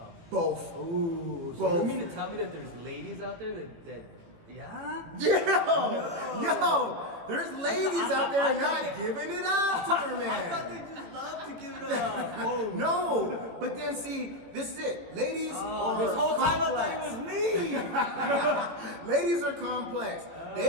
Both. Ooh. So Both. you mean to tell me that there's ladies out there that yeah? Yo, there's ladies out there not giving it up to their man. I thought they just love to give it up. Oh. No, but then see, this is it. Ladies are this whole time complex. I thought it was me. Ladies are complex. They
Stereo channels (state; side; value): late; left; 18 ms